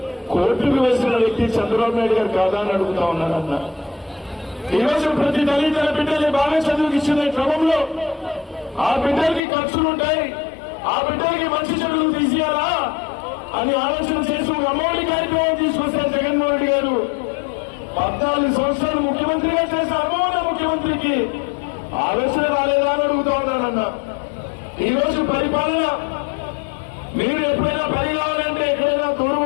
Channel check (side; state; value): right; drops out; at 9.4 s